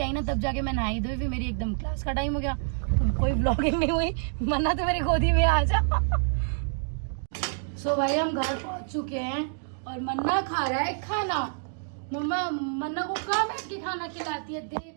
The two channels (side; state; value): left; silent; digital silence